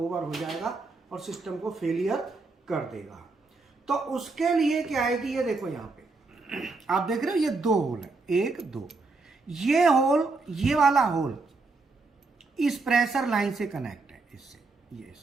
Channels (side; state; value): left; quieter; 3.8 dB